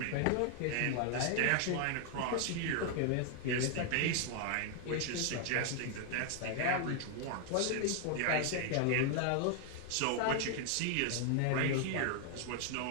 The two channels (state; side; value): different; both; correlation 0.00